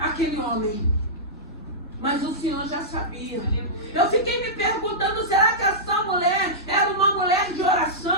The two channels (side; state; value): both; normal; correlation -0.14